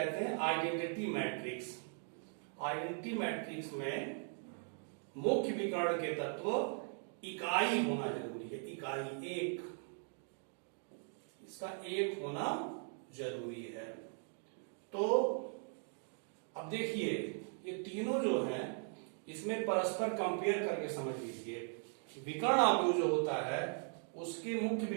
हैं आइडेंटिटी मैट्रिक्स। आइडेंटिटी मैट्रिक्स में मुख्य विकर्ण के तत्व इकाई होना जरूरी है। इकाई 1, इसका 1 होना जरूरी है। तो अब देखिए ये तीनों जो हैं इसमें परस्पर कंपेयर करके समझ लीजिए। विकर्ण अवयव जो होता है उसके मुख्य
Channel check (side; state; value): left; silent; 52 dB below the other